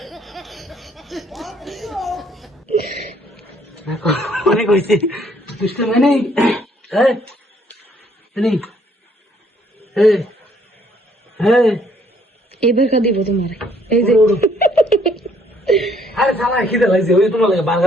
অনেক হয়েছে দুষ্ট মানে এবার খা দিব তোমার, এই যে আরে সালা খিদে লাগছে, ওই তোমার লাগে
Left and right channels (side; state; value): both; normal; correlation 0.65